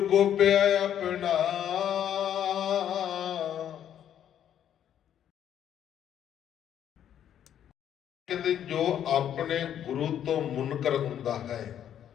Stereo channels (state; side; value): quieter; right; 10.0 dB